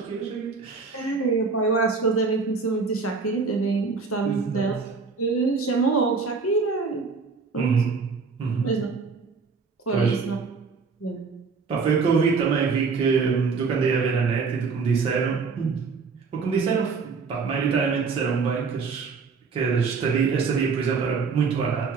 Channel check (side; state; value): left; quieter; 4.9 dB